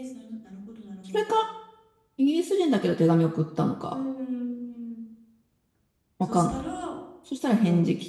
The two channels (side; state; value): both; identical; correlation 1.00